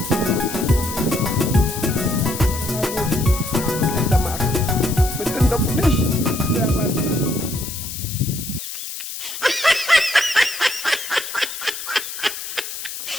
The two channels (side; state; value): left; noise; hiss, 8 dB below the sound